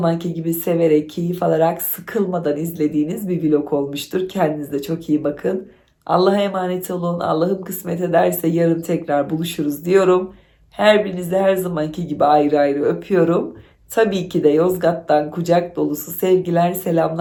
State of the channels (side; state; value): both; identical; correlation 1.00